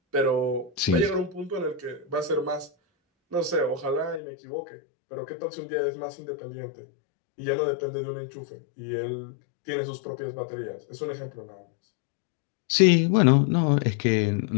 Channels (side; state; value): right; drops out; at 4.2 s